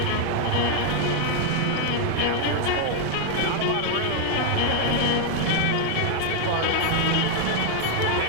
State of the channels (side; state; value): both; different; correlation 0.00